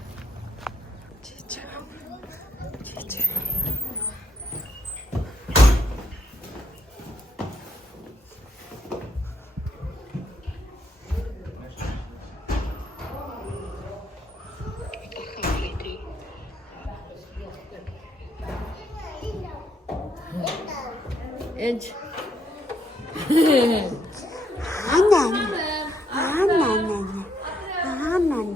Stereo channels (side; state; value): both; normal; correlation 0.73